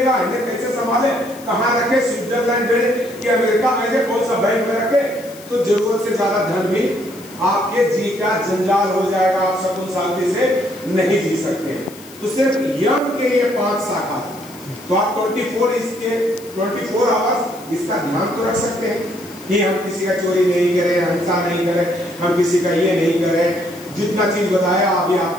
इन्हें कैसे संभाले, कहाँ रखे, स्विट्जरलैंड भेजे कि अमेरिका भेजे, कौन सा बैंक में रखे। तो जरूरत से ज्यादा धन भी आपके जी का जंजाल हो जाएगा, आप सकून शांति से नहीं जी सकते। तो सिर्फ यम के ये 5 शाखा, तो आप 24 आवर्स इसका ध्यान तो रख सकते हैं कि हम किसी का चोरी नहीं करें, हिंसा नहीं करें, हम किसी का ये नहीं करें। जितना चीज बताया अभी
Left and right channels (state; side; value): noise; left; hiss, 20 dB below the sound